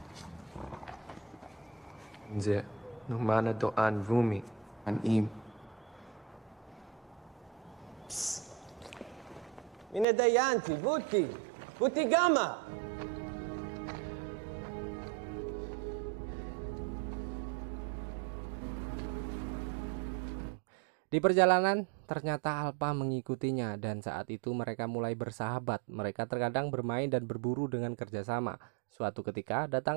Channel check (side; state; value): left; drops out; at 10.1 s